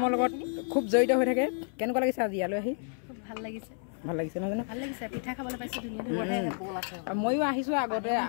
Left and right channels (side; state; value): right; silent; 58 dB below the other